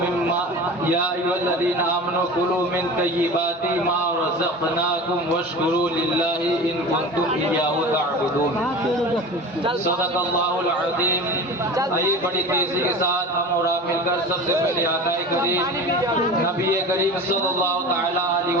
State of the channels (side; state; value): both; normal; correlation 0.34